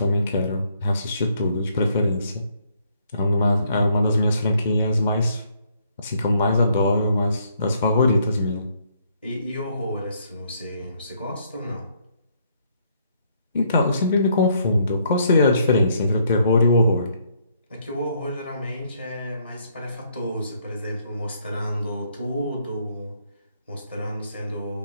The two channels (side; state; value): both; inverted; correlation -0.69